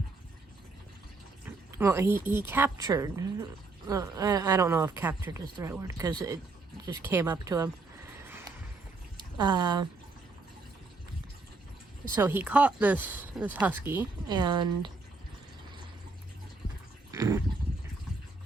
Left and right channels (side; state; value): left; quieter; 3.6 dB